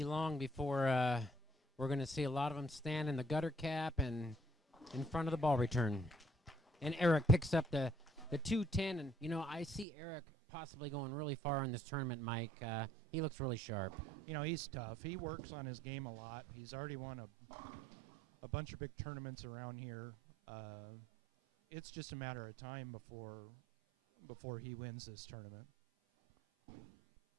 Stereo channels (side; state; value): left; drops out; at 9.9 s